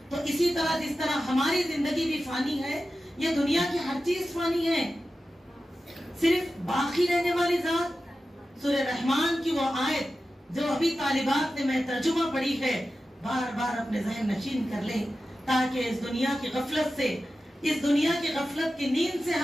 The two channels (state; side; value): normal; both; correlation 0.93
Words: तो इसी तरह जिस तरह हमारी जिंदगी भी फानी है, ये दुनिया की हर चीज फानी है, सिर्फ बाकी रहने वाली जात। सूरह रहमान की वो आयत जो अभी तालिबात ने मैं तर्जुमा पढ़ी है, बार बार अपने ज़हन नशीन कर लें ताकि इस दुनिया की गफलत से, इस दुनिया की गफलत की नींद से